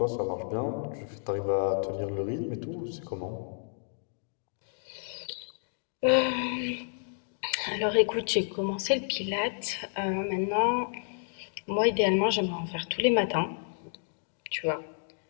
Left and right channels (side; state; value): right; silent; digital silence